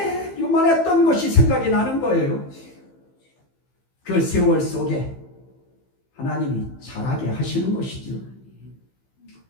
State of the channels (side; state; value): right; late; 15 ms